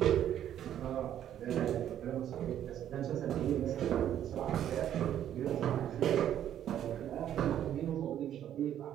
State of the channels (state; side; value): quieter; left; 10.7 dB